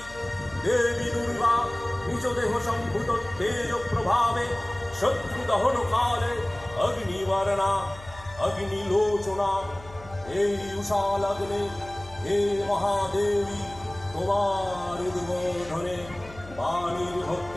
দেবী দুর্গা নিজ দেহ সম্ভূত তেজ প্রভাবে শত্রু দহন কালে অগ্নিবর্ণা অগ্নিলোচনা। এই উষা লগ্নে হে মহাদেবী, তোমার উদ্বোধনে বাণীর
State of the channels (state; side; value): noise; left; hum, 18 dB below the sound